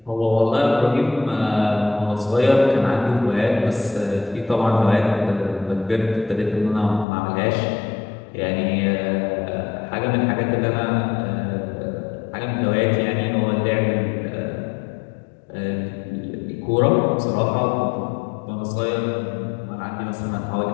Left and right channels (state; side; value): drops out; right; at 7.1 s